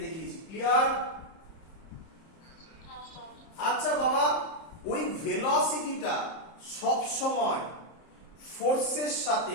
দেখিয়েছি। ক্লিয়ার? আচ্ছা বাবা, ওই ভেলোসিটিটা সব সময় ফোর্সের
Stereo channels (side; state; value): right; late; 30 ms